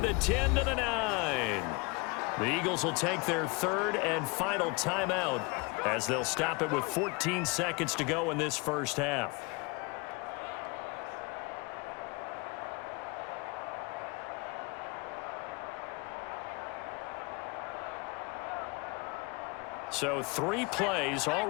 the 10 to the 9. The Eagles will take their third and final timeout as they'll stop it with 14 seconds to go in this first half. So 3 plays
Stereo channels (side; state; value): right; quieter; 27.9 dB